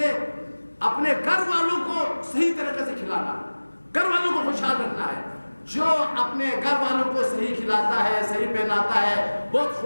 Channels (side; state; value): both; inverted; correlation -1.00